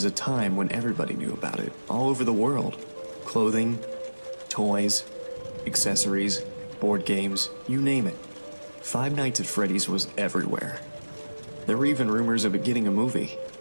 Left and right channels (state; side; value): inverted; both; correlation -1.00